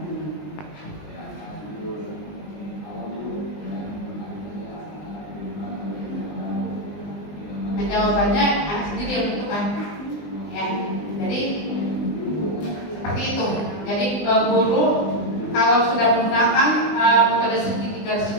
Jawabannya sendiri yang menentukan ya. Jadi seperti itu. Jadi guru kalau sudah menggunakan metode segitiga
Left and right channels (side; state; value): right; late; 20 ms